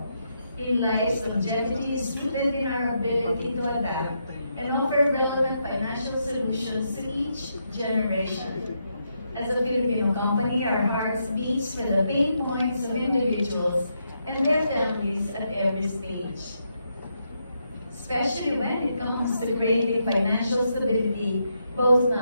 eLife's longevity is rooted in our ability to adapt and offer relevant financial solutions to each generation. As a Filipino company, our hearts beat for the pain points of individuals and their families at every stage, especially when it comes to creating financial stability both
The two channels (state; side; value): inverted; both; correlation -0.81